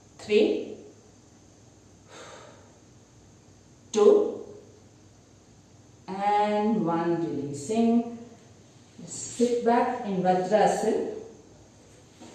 3, 2 and 1. Releasing. Sit back in Vajrasana.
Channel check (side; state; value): both; identical; correlation 1.00